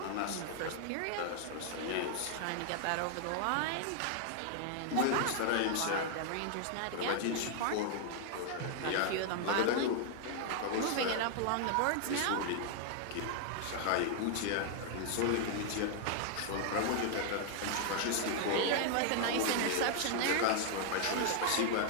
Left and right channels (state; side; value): different; both; correlation 0.00